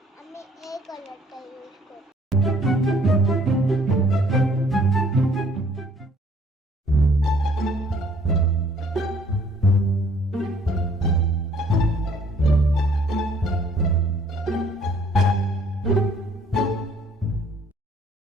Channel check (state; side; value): normal; both; correlation 0.60